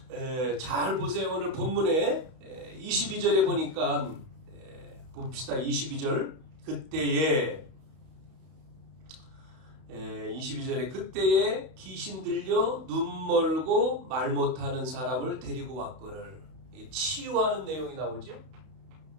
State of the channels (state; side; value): late; left; 31 ms